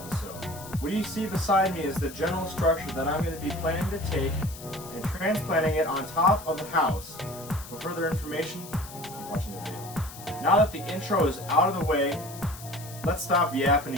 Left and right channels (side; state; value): left; noise; hiss, 15 dB below the sound